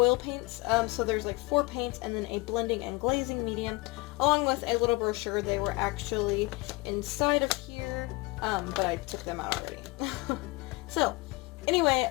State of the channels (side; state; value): right; quieter; 24.3 dB